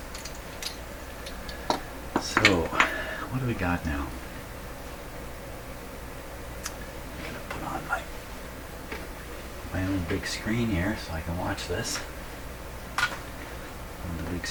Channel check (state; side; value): identical; both; correlation 1.00